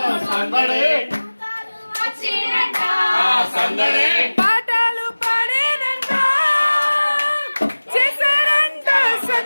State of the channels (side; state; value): both; inverted; correlation -1.00